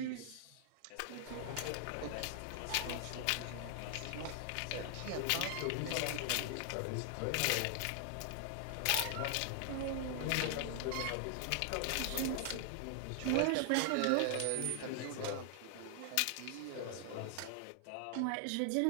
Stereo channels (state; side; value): different; both; correlation 0.00